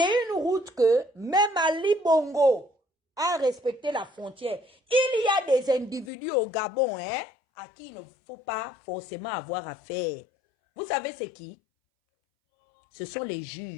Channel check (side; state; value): right; drops out; at 6.1 s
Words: une route que même Ali Bongo a respecté la frontière. Il y a des individus au Gabon, hein, à qui il ne faut pas forcément avoir affaire. Vous savez c'est qui? Ce sont les